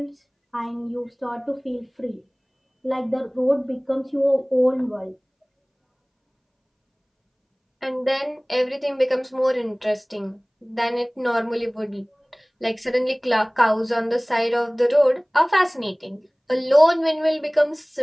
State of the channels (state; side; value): identical; both; correlation 1.00